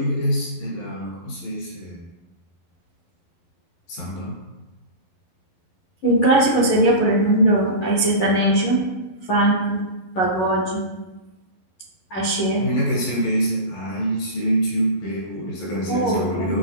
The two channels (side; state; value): right; late; 11 ms